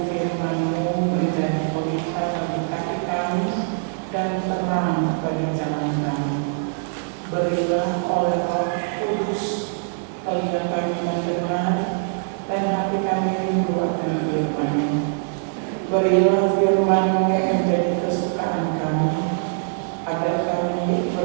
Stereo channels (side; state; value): left; silent; digital silence